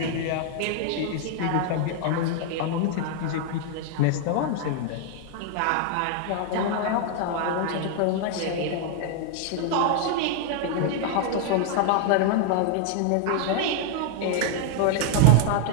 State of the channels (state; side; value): different; both; correlation 0.00